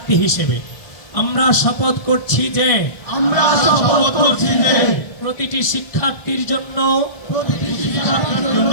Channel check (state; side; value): late; right; 1.6 ms